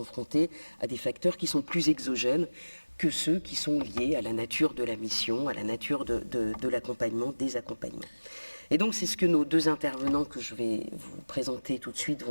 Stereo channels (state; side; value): inverted; both; correlation -1.00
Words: à des facteurs qui sont plus exogènes que ceux qui sont liés à la nature de la mission, à la nature de l'accompagnement, des accompagnements. Et donc c'est ce que nos deux intervenants que je vais vous présenter tout de suite